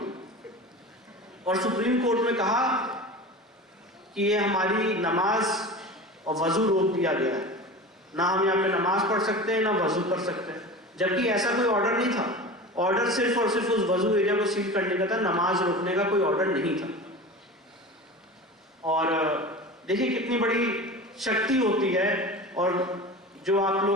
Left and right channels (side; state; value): both; normal; correlation 0.32